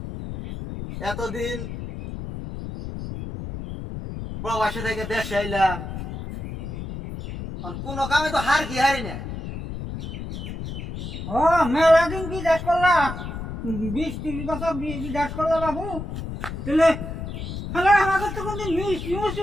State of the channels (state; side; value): noise; left; rumble, 7 dB below the sound